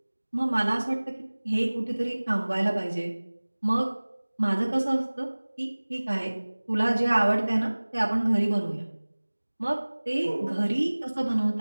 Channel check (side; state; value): both; inverted; correlation -1.00